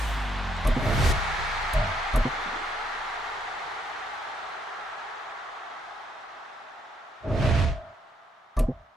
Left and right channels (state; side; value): normal; both; correlation 0.73